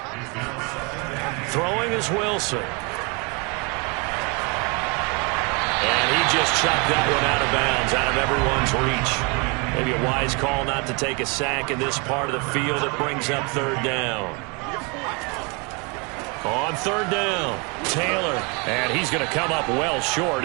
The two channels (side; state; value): left; quieter; 30.6 dB